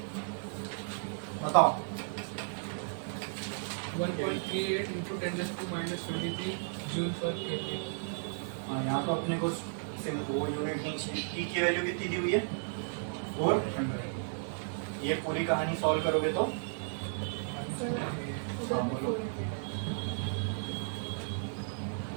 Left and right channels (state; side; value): silent; left; digital silence